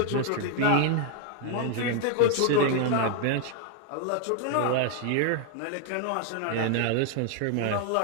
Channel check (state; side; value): different; both; correlation 0.00